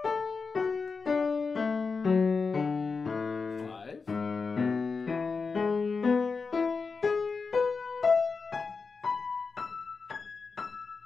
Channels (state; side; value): quieter; right; 4.7 dB